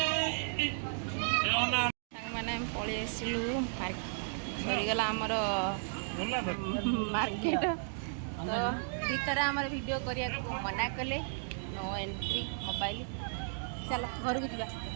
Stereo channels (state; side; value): silent; left; digital silence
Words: मैंने पलि आसलु सरीगला आमर मार्केट। तो भीतर आमर वीडियो करिया को मना कले नो एंट्री मोबाइल। चलो घर को जा